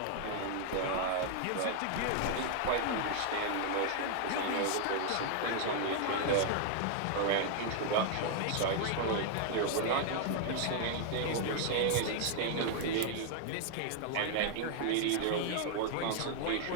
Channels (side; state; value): both; different; correlation -0.01